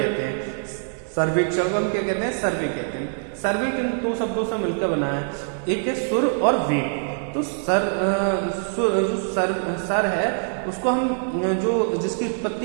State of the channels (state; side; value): silent; left; 63 dB below the other